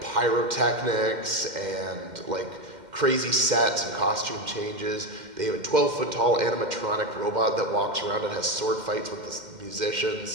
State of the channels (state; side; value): late; left; 2.1 ms